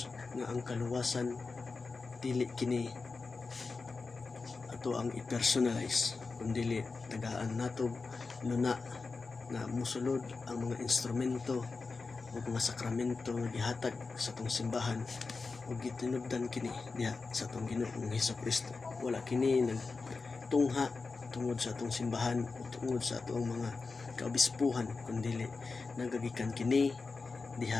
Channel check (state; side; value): quieter; right; 4.2 dB